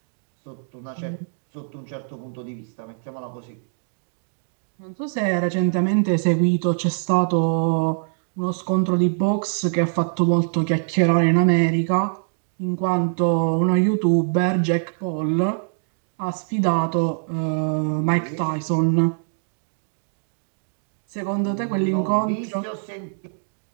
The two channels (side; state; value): left; silent; digital silence